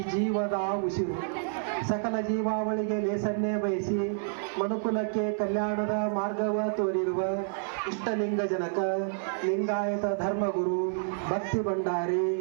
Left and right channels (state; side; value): silent; left; 59 dB below the other